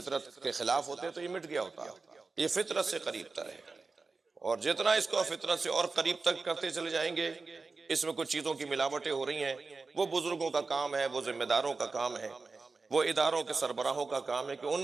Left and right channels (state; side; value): quieter; left; 4.0 dB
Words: کے خلاف ہوتے تو یہ مٹ گیا ہوتا۔ یہ فطرت سے قریب تر ہے، اور جتنا اس کو فطرت سے اور قریب تک کرتے چلے جائیں گے، اس میں کچھ چیزوں کی ملاوٹیں ہو رہی ہیں، وہ بزرگوں کا کام ہے، وہ ذمہ داروں کا کام ہے، وہ اداروں کے سربراہوں کا کام ہے کہ ان